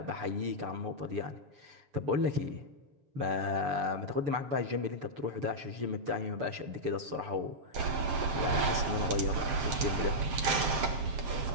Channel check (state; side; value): late; left; 7.6 ms